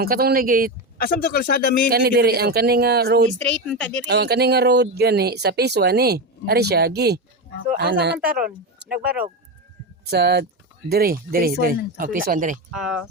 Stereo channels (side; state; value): both; normal; correlation 0.15